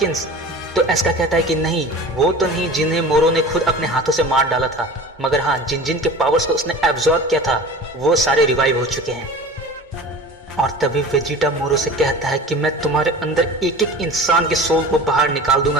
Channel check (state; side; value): normal; both; correlation 0.38